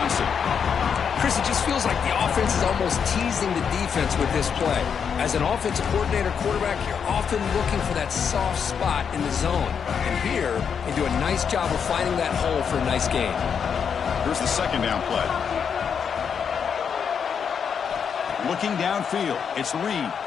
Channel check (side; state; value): right; quieter; 7.0 dB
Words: Chris, it just feels like the offense is almost teasing the defense with this play. As an offensive coordinator, quarterback, you're often looking for that soft spot in the zone. And here, they do a nice job of finding that hole for a nice gain. Here's the second down play. Looking downfield, it's Reed.